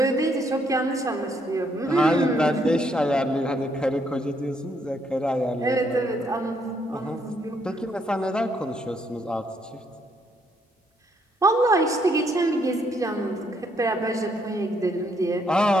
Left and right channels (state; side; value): normal; both; correlation 0.72